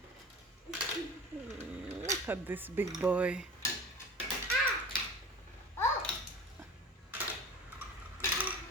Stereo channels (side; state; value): both; normal; correlation 0.37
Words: Look at this big boy.